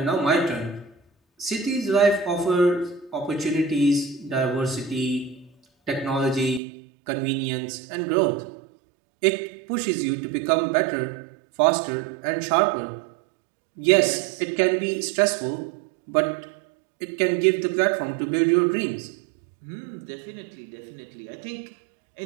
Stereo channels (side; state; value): left; drops out; at 6.6 s